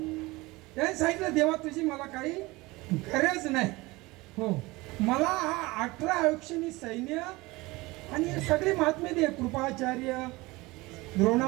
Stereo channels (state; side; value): quieter; left; 21.8 dB